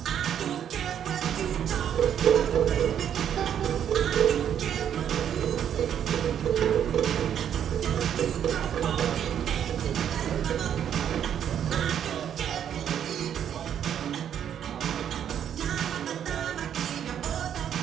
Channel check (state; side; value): quieter; left; 9.3 dB